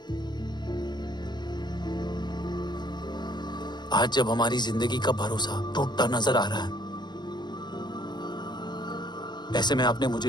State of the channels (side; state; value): right; late; 0.21 ms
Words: जब हमारी जिंदगी का भरोसा टूटता नजर आ रहा है, ऐसे में आपने